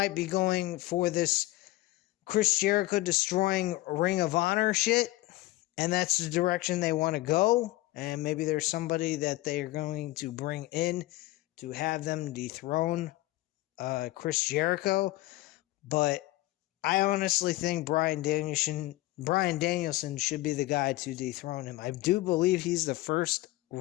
be going for this Chris Jericho destroying Ring of Honor shit, and that's the direction they want to go. And maybe there's somebody that they are going to bring in to have them dethrone Chris Jericho. But I honestly think Bryan Danielson should be the guy to dethrone him. I do believe he's the first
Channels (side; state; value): right; quieter; 18.1 dB